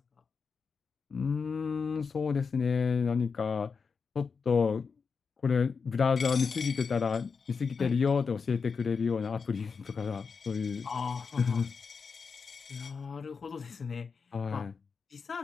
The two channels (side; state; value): right; quieter; 5.4 dB